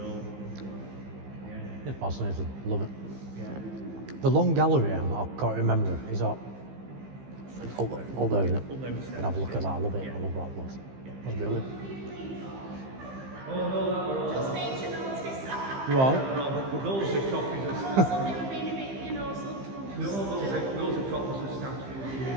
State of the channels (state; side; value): late; left; 15 ms